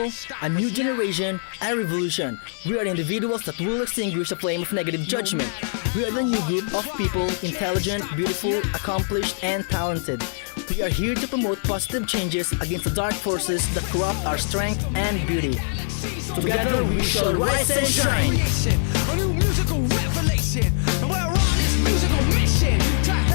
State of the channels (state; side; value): silent; right; digital silence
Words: a new generation, a revolution. We are individuals that will extinguish the flame of negative judgment. We are the new group of people, intelligent, beautiful, accomplished, and talented. We are here to promote positive changes against the dark forces that corrupt our strength and beauty. Together we shall rise and shine. A new musical revelation, and we're on this musical mission to